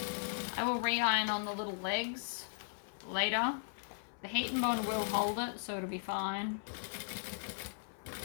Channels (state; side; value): silent; right; 53 dB below the other